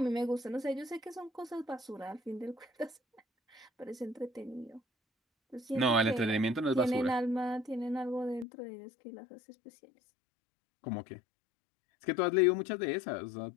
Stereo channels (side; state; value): right; drops out; at 8.5 s